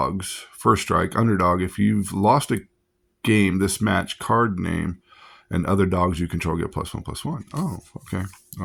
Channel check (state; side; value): identical; both; correlation 1.00